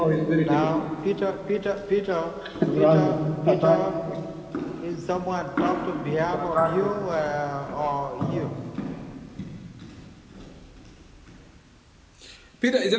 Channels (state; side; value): identical; both; correlation 1.00